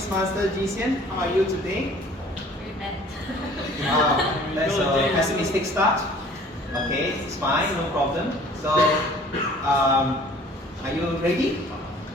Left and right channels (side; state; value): both; normal; correlation 0.51